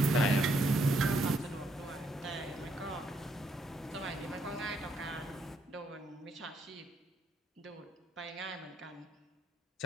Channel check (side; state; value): both; normal; correlation 0.73